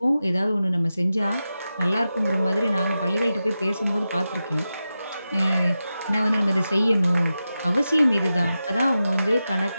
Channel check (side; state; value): both; inverted; correlation -0.92